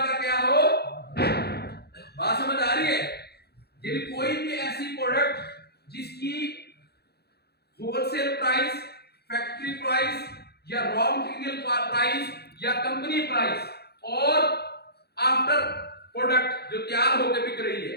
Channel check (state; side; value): late; right; 0.47 ms